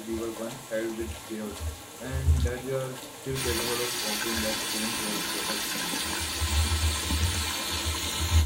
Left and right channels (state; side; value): identical; both; correlation 1.00